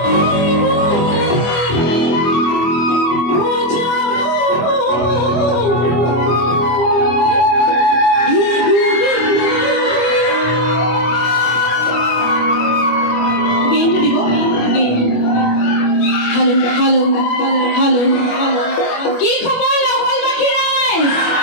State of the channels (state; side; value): late; right; 25 ms